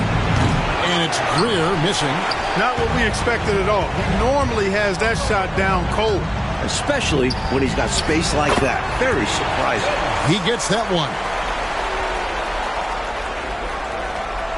it's Greer missing. Not what we expected at all. He normally has that shot down cold. Especially when he's got space like that. Very surprising. He gets that one.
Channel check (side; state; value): both; identical; correlation 1.00